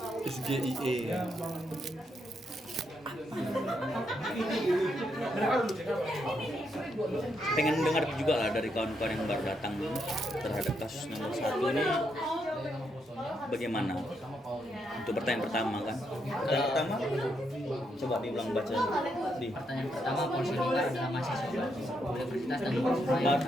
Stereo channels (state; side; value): normal; both; correlation 0.79